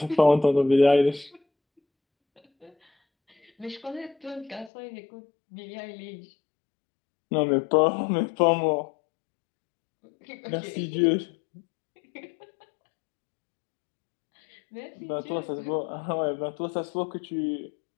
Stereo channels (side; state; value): right; drops out; at 4.7 s